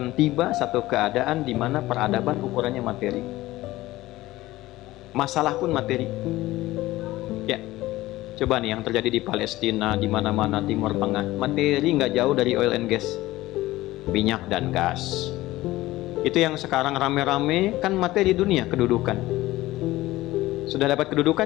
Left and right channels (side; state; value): right; quieter; 17.4 dB